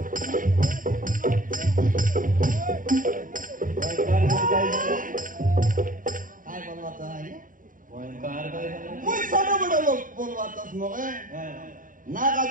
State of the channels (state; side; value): late; left; 0.39 ms